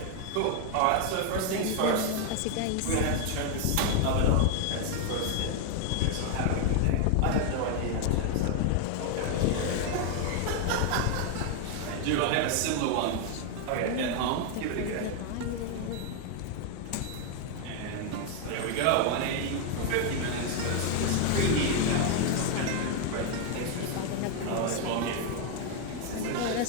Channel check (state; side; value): different; both; correlation 0.00